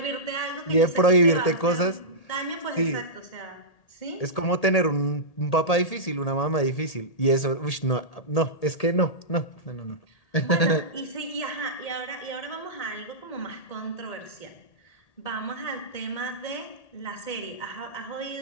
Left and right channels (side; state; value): right; late; 1.8 ms